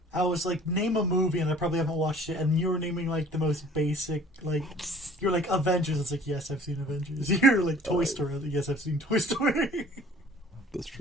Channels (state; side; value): normal; both; correlation 0.51